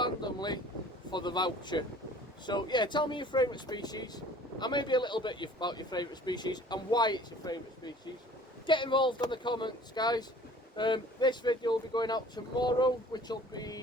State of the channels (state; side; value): normal; both; correlation 0.49